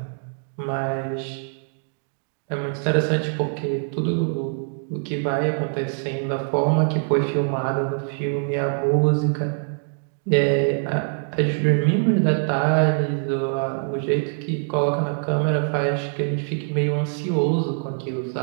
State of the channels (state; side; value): silent; left; 59 dB below the other